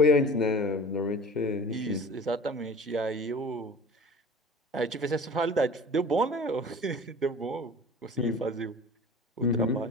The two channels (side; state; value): both; normal; correlation 0.42